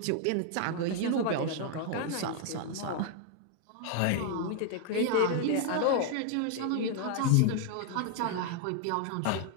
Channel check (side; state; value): both; different; correlation 0.00